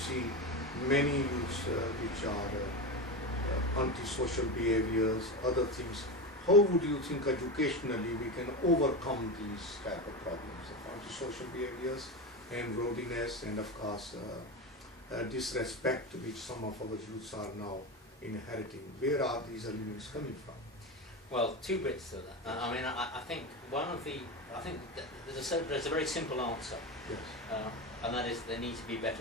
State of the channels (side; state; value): both; normal; correlation 0.20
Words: many youths which are antisocial behaviors, other things. How would you think educationally we can overcome these type of problems of antisocial behaviors and rowdiness and of course disrespect which some of our youths are now inheriting? Where are these elements coming from? Well, two bits to that. I mean, I think there's a very simple answer. Yes. And that is, there need to be